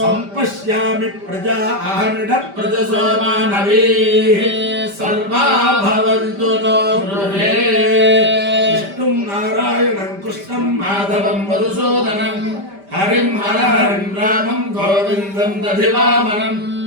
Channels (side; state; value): left; late; 5.1 ms